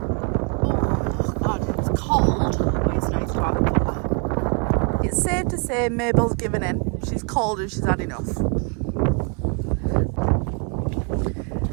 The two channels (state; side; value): quieter; left; 36.0 dB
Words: Cold, but it's nice to have a cuppa. It's safe to say Mabel's given in. She's cold and she's had enough.